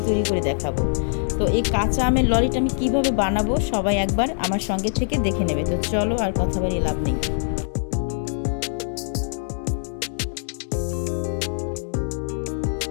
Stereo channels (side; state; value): right; silent; digital silence